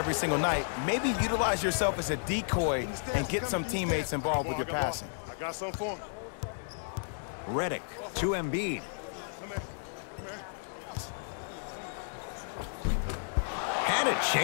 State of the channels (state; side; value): silent; right; 56 dB below the other